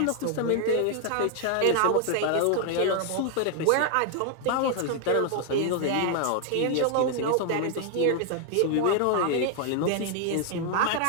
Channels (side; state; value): both; different; correlation 0.00